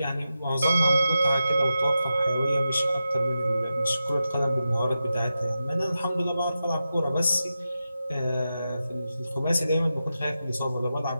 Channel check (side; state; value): both; inverted; correlation -0.91